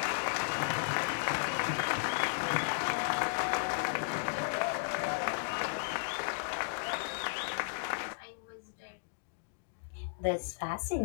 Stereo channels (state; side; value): silent; right; digital silence